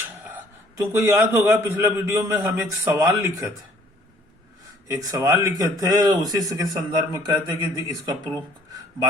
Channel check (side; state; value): both; normal; correlation 0.59